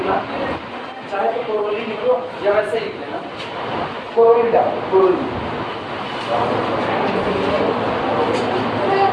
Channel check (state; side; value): identical; both; correlation 1.00